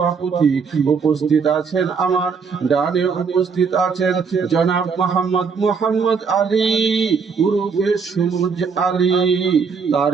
উপস্থিত আছেন, আমার ডানে উপস্থিত আছেন জনাব মোহাম্মদ আলী উরুফে সুমুজ আলী,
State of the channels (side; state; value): left; quieter; 5.6 dB